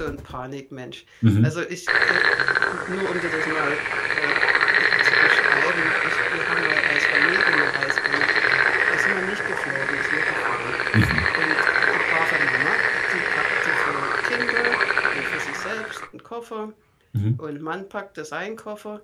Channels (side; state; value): both; identical; correlation 1.00